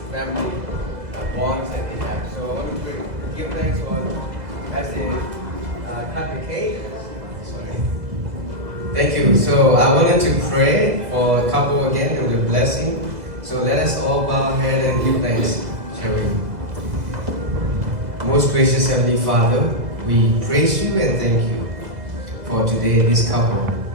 family bonds that they have. So I want to give thanks for as they cut the cake. Sorry. Thank you. So I wanted to pray for a couple again with a blessing. So let us all bow our head and give thanks, shall we? Most gracious Heavenly Father, we praise you and thank you for today, this couple,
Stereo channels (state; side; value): late; left; 2.0 ms